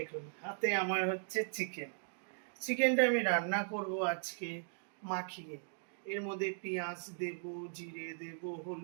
হাতে আমার হচ্ছে চিকেনটা আমি রান্না করব আজকে মাখিয়ে। এর মধ্যে পেঁয়াজ দেব, জিরে দেব,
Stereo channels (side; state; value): left; silent; digital silence